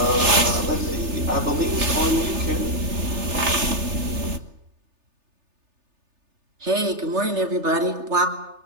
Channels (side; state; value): left; late; 3.3 ms